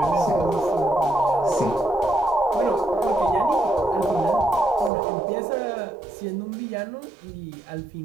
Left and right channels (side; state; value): left; drops out; at 4.9 s